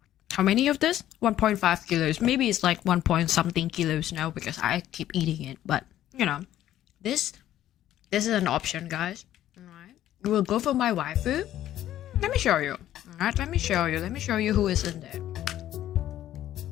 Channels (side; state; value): right; quieter; 12.6 dB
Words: How many of this? 1.5 kilos. Maybe it's like 1 point something kilos now because I keep eating it. But, you know, this is an option, guys. Alright. We'll go for my waifu. Let me show you. Alright, let me show you who is in there.